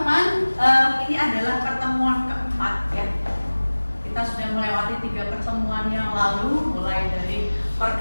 ini adalah pertemuan keempat ya. Kita sudah melewati 3 pertemuan yang lalu, mulai dari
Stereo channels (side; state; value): both; inverted; correlation -1.00